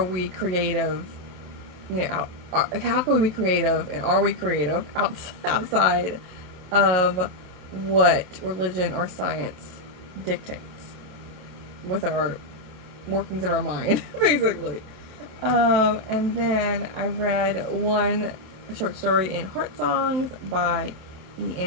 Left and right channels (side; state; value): left; late; 27 ms